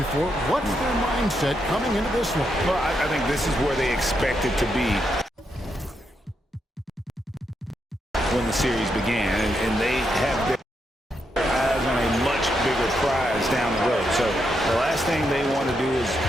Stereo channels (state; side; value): normal; both; correlation 0.81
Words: What's their mindset coming into this one? Well, I think this is where they expect it to be when the series began, and they have their eyes on a much bigger prize down the road. So the last thing they want to do is